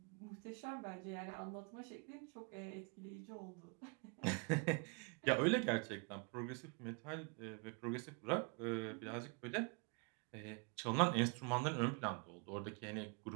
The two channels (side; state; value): left; quieter; 33.7 dB